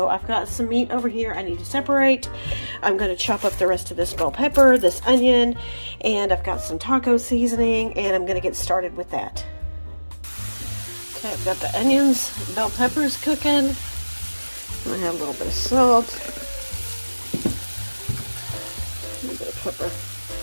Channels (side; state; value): both; inverted; correlation -1.00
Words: I've got some meat over here I need to separate. I'm going to chop up the rest of this bell pepper, this onion, and I've got some taco seasoning, and I'm going to get started with that. Okay, I've got the onions, bell peppers cooking. I'm going to have a little bit of salt. A little bit of pepper.